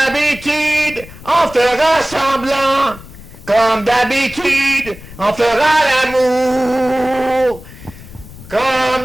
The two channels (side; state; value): left; noise; rumble, 17 dB below the sound